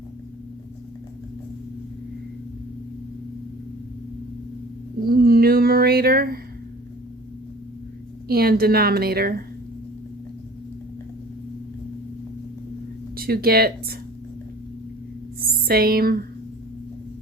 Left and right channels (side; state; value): both; normal; correlation 0.46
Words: numerator and denominator to get same